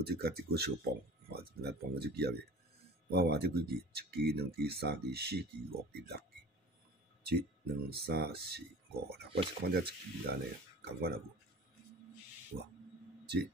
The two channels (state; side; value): normal; both; correlation 0.41